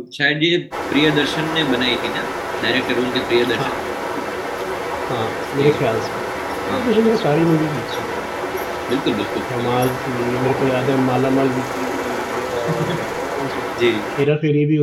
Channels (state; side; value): identical; both; correlation 1.00